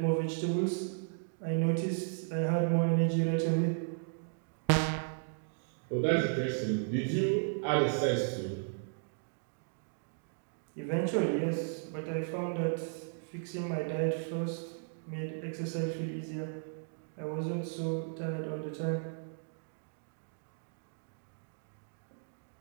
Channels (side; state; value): left; silent; digital silence